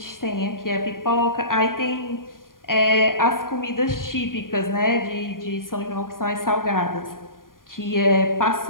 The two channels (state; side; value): late; right; 0.90 ms